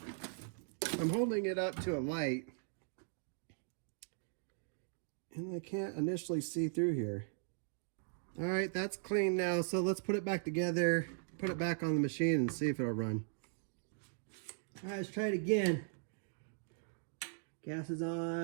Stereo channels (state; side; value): silent; left; digital silence